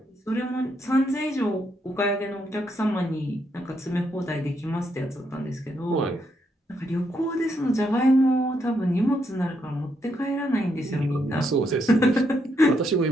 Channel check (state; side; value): normal; both; correlation 0.77